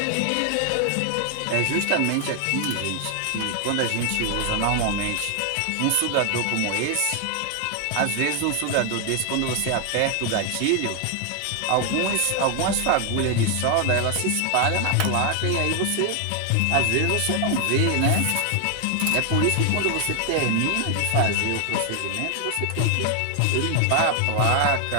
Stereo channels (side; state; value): both; different; correlation 0.00